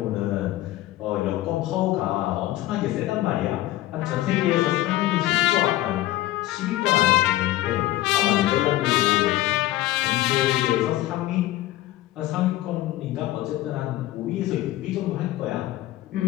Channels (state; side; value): quieter; right; 15.8 dB